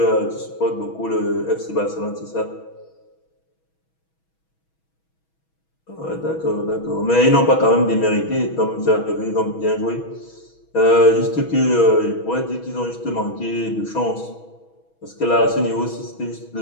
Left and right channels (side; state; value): right; late; 6.2 ms